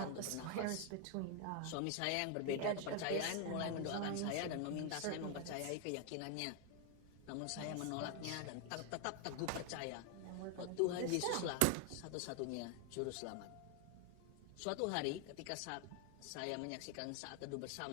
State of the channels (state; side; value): different; both; correlation 0.01